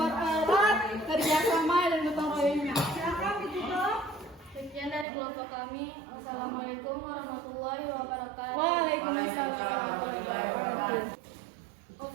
kerjasama dan gotong royongnya. Silakan ditutup. Sekian dari kelompok kami. Assalamualaikum warahmatullahi wabarakatuh. Waalaikumsalam.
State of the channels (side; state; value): left; drops out; at 5.1 s